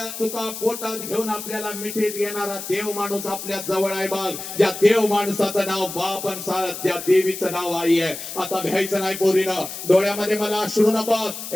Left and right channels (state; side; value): noise; left; hiss, 9 dB below the sound